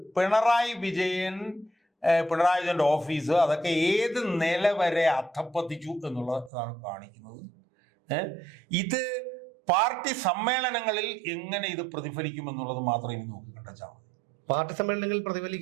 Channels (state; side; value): drops out; left; at 6.5 s